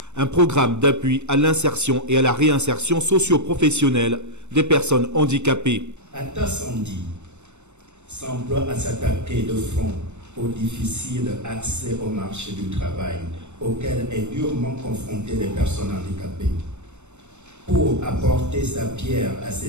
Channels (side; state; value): left; late; 0.83 ms